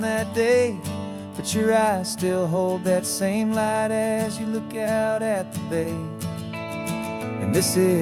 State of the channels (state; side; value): identical; both; correlation 1.00